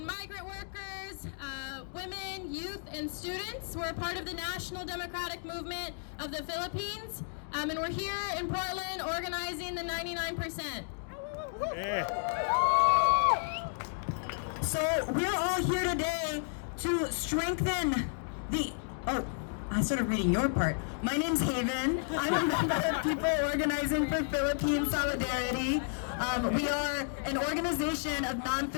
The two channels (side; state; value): right; silent; digital silence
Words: migrant workers, women, youth, and students. We're a part of the National Democratic Movement of the Philippines, and we're here in Portland organizing the 99%. So we're all here today to strengthen the, I started reading your part. My name's Haven. I'm a member of People Organizing for Philippine Solidarity. We are an organization of